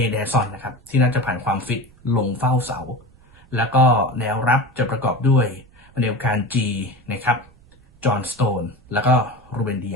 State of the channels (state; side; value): noise; right; rumble, 28 dB below the sound